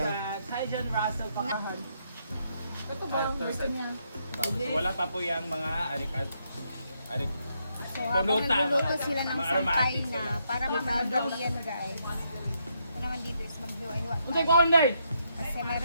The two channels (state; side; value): inverted; both; correlation -0.77